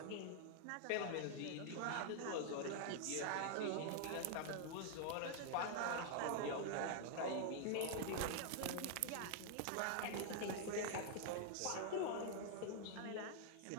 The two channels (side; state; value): both; different; correlation 0.00